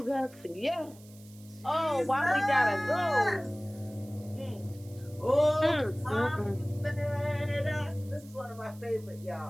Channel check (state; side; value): noise; right; hiss, 24 dB below the sound